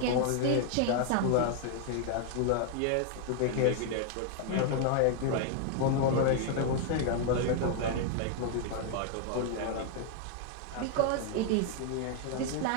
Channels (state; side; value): different; both; correlation 0.00